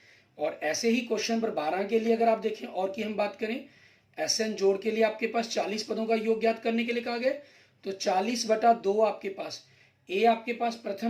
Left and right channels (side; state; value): both; identical; correlation 1.00